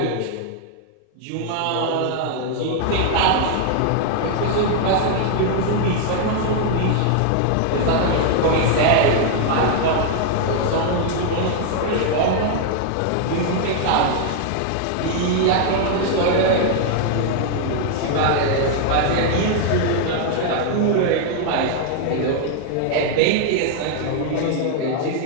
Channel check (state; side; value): different; both; correlation 0.00